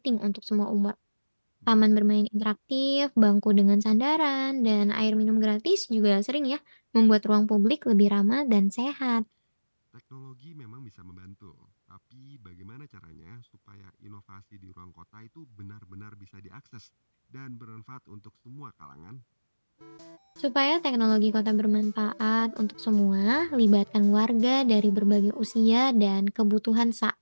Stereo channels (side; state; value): both; inverted; correlation -1.00